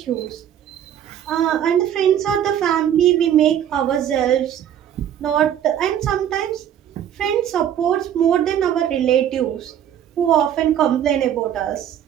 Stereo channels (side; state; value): left; quieter; 10.1 dB